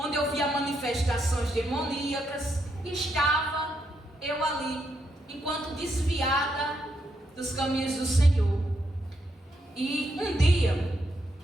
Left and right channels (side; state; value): both; normal; correlation 0.79